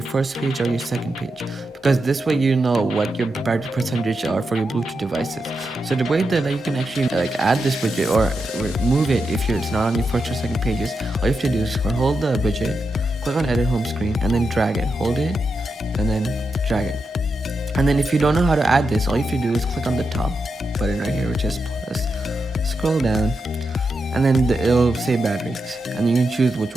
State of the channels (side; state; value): both; normal; correlation 0.87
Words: first page or your second page, because this way you know what your battery percentage are for your Bluetooth devices. So the way that you can actually add this widget or remove it if it's not on your first or second pages, all you have to do is hold the widget, click on edit home screen, and then drag it. Hold it and then drag it. And then if you don't know how to add this, all you have to do is click on the top button right here, which is plus, scroll down, and then it'll say batteries, and you can choose which